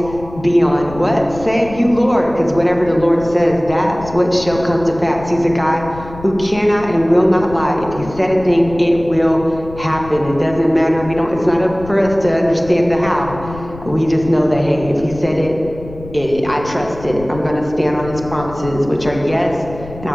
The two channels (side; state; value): left; noise; rumble, 15 dB below the sound